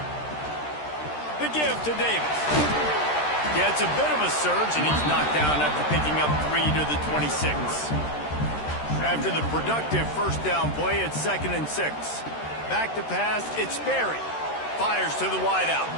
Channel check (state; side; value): late; right; 13 ms